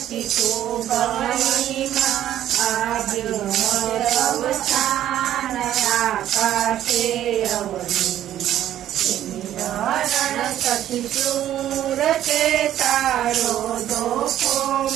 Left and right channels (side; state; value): left; quieter; 11.9 dB